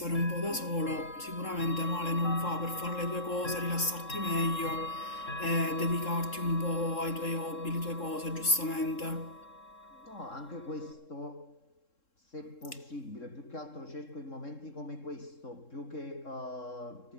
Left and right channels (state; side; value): late; right; 3.7 ms